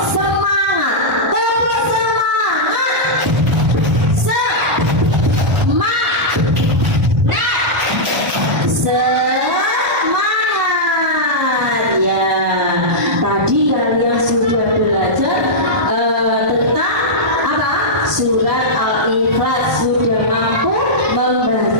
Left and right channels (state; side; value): late; left; 1.2 ms